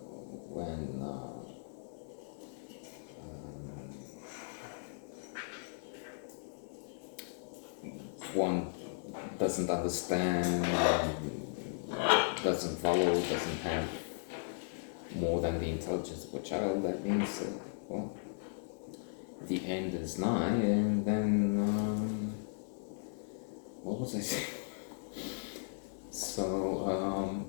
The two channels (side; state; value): right; silent; 53 dB below the other